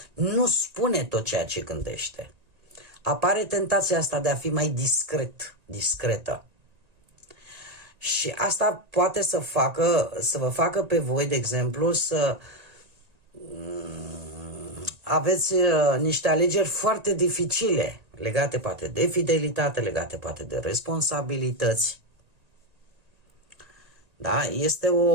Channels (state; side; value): late; left; 1.9 ms